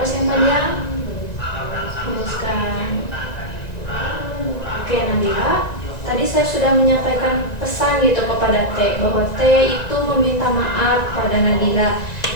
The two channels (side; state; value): right; late; 1.9 ms